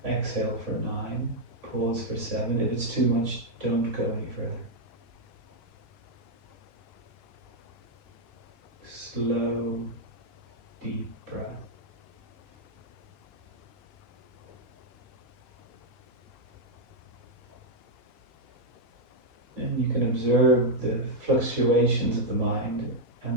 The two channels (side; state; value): left; late; 3.6 ms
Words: exhale for 9, pause for 7. If it's too much, don't go any further. Slow, deep breath. And you can observe the fluctuations of the mind